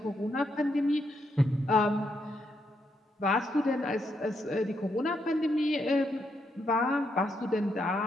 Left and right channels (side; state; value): both; normal; correlation 0.79